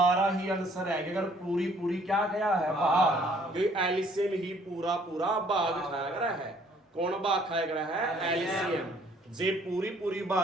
ही आंसर है अगर पूरी क्या गया है भाग क्योंकि एलसीएम ही पूरा भाग खाया गया है कौन भाग खाया गया है एलसीएम जे पूरी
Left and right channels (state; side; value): normal; both; correlation 0.61